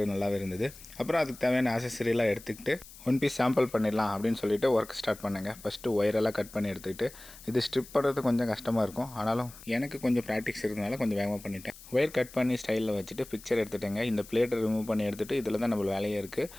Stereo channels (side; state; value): left; noise; hiss, 18 dB below the sound